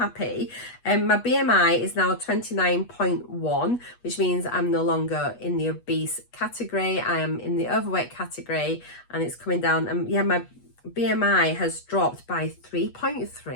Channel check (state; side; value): late; right; 8.3 ms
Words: My BMI is now 29.1, which means I'm no longer in the obese category. I am in the overweight category, and it's coming down. And yeah, my BMI has dropped by